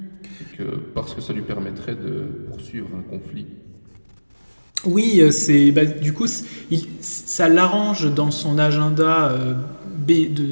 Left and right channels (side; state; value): both; inverted; correlation -1.00